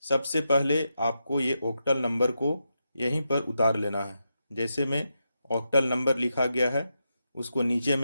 सबसे पहले आपको ये ऑक्टल नंबर को यहीं पर उतार लेना है। जैसे में ऑक्टल नंबर लिखा गया है उसको नीचे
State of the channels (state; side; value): inverted; both; correlation -0.86